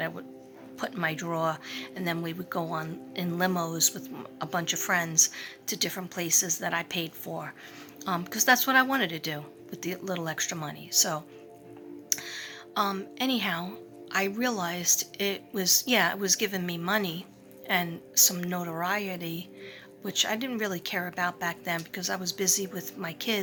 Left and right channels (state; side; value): identical; both; correlation 1.00